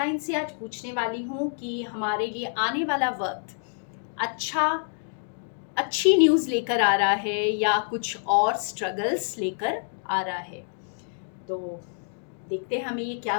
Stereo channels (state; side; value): silent; right; 60 dB below the other